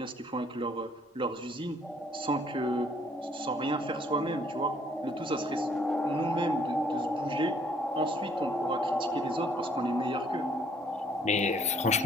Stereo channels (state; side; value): normal; both; correlation 0.63